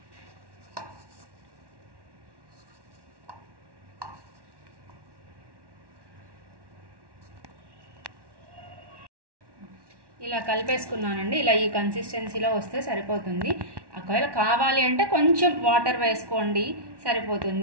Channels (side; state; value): left; late; 1.1 ms